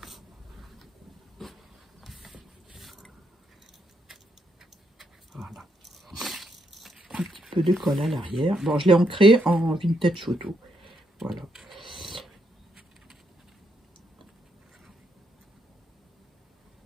Voilà. Un petit peu de colle à l'arrière. Bon, je l'ai ancré en vintage photo. Voilà.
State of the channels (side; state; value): both; normal; correlation 0.77